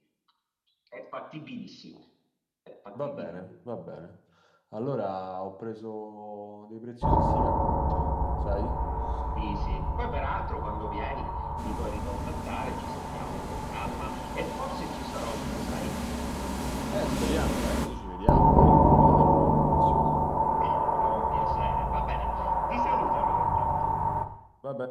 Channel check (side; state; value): both; identical; correlation 1.00